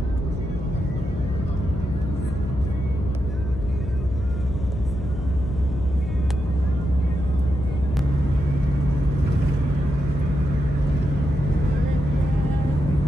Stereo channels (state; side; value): noise; left; hum, 6 dB below the sound